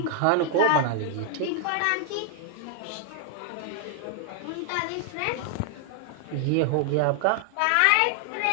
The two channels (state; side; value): different; both; correlation 0.00